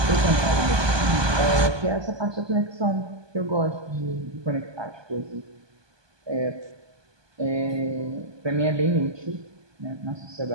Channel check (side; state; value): left; late; 1.2 ms